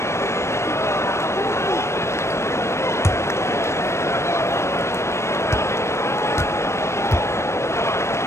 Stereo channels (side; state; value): right; late; 0.13 ms